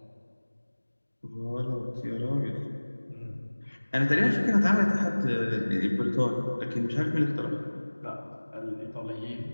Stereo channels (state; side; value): inverted; both; correlation -1.00